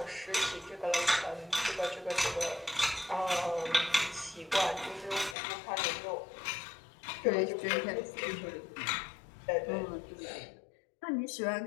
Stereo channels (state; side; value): drops out; right; at 5.4 s